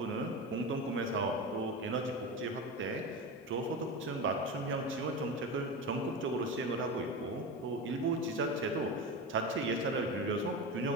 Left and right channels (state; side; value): normal; both; correlation 0.23